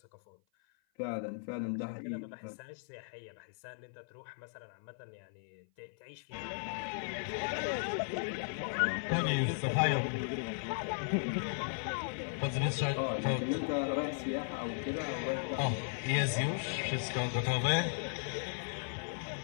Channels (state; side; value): silent; right; 53 dB below the other